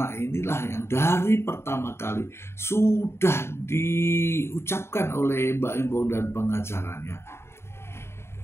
inilah yang dari pertama kali sudah diucapkan oleh Baim Wong dan pengacaranya.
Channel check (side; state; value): right; late; 0.12 ms